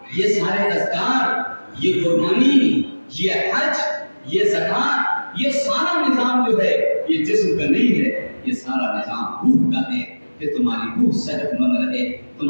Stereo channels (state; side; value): inverted; both; correlation -1.00